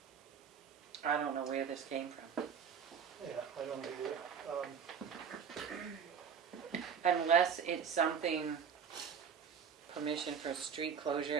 I don't know where this came from. Yeah, I don't either. Unless it's something, permission for street closure,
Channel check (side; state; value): left; quieter; 7.0 dB